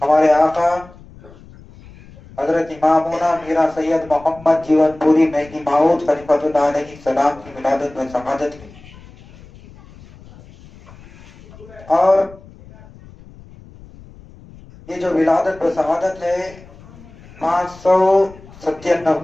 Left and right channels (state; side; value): noise; left; rumble, 21 dB below the sound